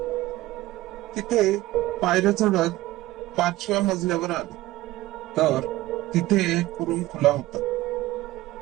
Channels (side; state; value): left; quieter; 17.2 dB